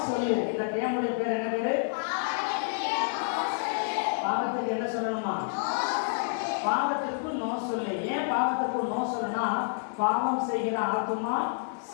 சொல்லு. இந்த கேமுடைய பேர் என்ன பேரு? பாவத்துக்கு என்ன சொல்லணுமா? பாவத்திற்கு நோ சொல்லு. ஏன் பாவத்திற்கு நோ சொல்லுனா, பாவம் செய்கிற ஆத்மா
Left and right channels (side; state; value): right; silent; digital silence